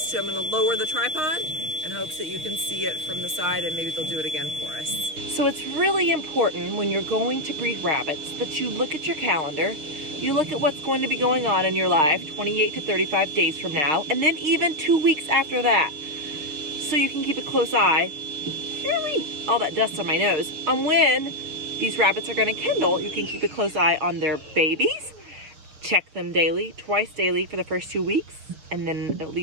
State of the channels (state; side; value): late; left; 6.5 ms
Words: two. I'm gonna lower the tripod in hopes that you can see it from the side, and maybe they'll do it again for us. So it's really important when you're going to breed rabbits that you look at your calendar, you look at what's going to be going on in your life 28 to 35 days from now, and then even 2 weeks after that. So you can keep a close eye, all that dust on my nose, on when these rabbits are gonna kennel. You can keep a close eye on their babies. Check them daily, twice daily for the first 2 weeks, and then at